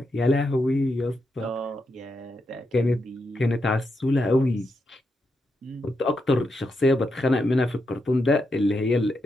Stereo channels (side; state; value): both; normal; correlation 0.84